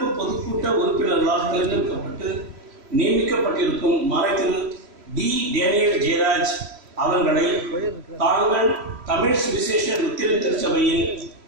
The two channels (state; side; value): late; left; 3.1 ms